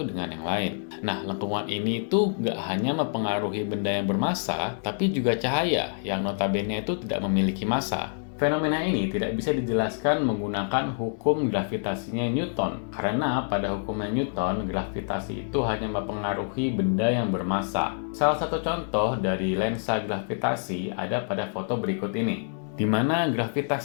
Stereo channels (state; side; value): silent; right; 60 dB below the other